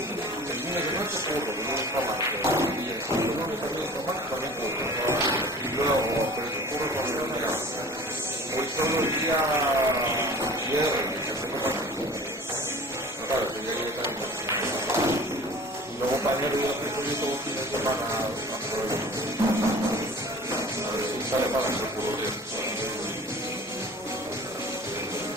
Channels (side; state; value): both; normal; correlation 0.43